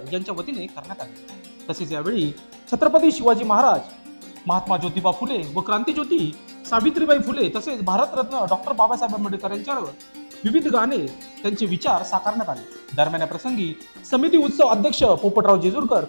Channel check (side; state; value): both; inverted; correlation -1.00